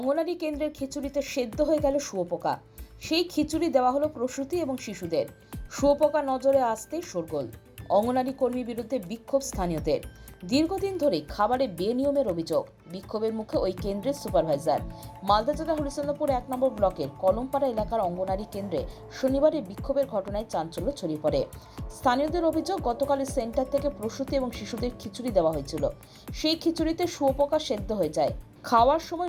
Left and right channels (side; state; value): both; identical; correlation 1.00